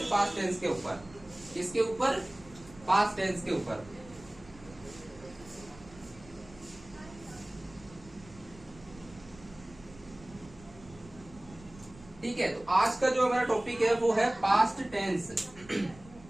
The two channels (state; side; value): noise; right; rumble, 21 dB below the sound